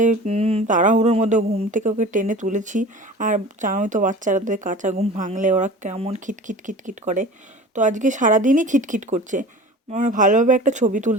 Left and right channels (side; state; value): both; normal; correlation 0.39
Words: তাড়াহুড়োর মধ্যে ঘুম থেকে ওকে টেনে তুলেছি। আর জানোই তো বাচ্চাদের কাঁচা ঘুম ভাঙলে ওরা কেমন খিটখিট খিটখিট করে। তো আজকে সারাদিনই খিটখিট করছে, মানে ভালোভাবে একটা ছবি